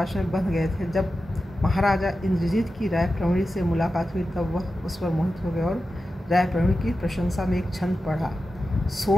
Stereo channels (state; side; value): normal; both; correlation 0.92